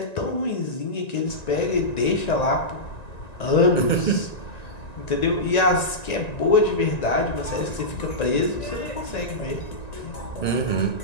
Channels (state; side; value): late; right; 1.9 ms